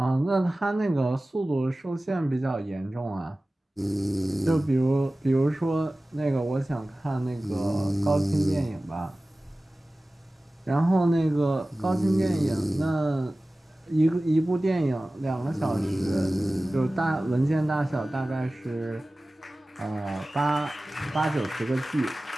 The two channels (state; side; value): normal; both; correlation 0.97